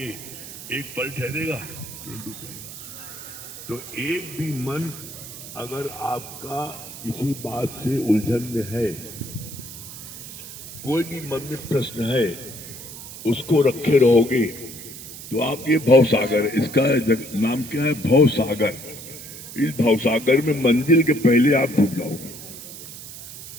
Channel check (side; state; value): right; noise; hiss, 13 dB below the sound